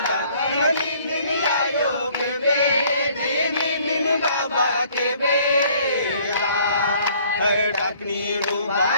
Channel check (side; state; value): both; inverted; correlation -0.59